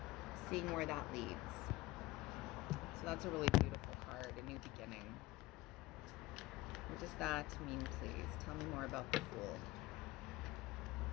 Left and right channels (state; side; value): quieter; right; 18.5 dB